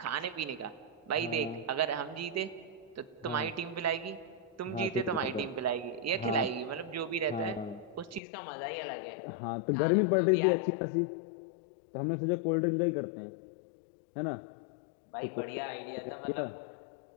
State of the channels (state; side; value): drops out; right; at 8.2 s